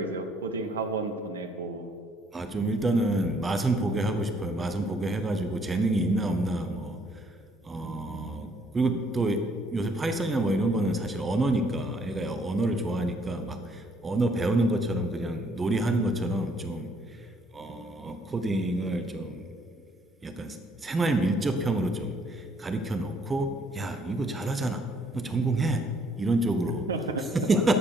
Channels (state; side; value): normal; both; correlation 0.66